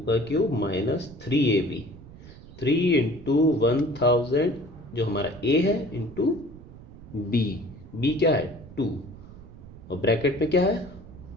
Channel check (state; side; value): noise; right; rumble, 17 dB below the sound